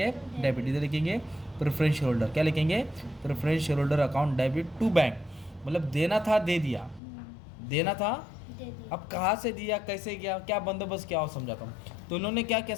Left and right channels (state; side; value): drops out; right; at 7.0 s